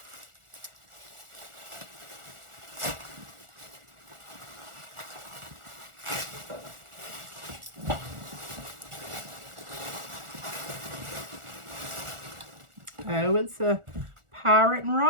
Oh, it's a Pirate and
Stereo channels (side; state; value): left; late; 1.4 ms